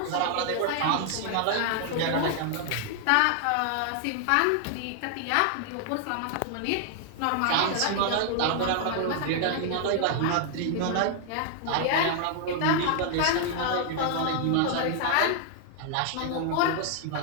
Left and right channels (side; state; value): both; different; correlation 0.00